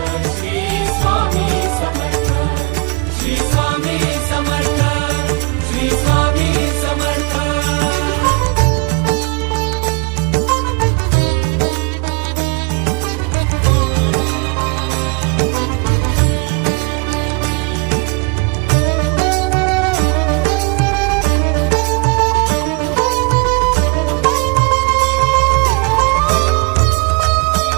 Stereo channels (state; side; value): quieter; left; 30.1 dB